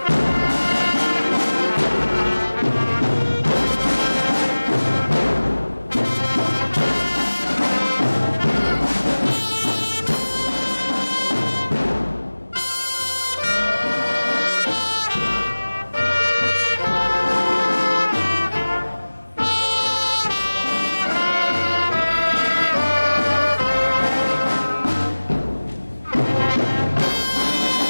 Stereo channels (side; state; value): both; inverted; correlation -1.00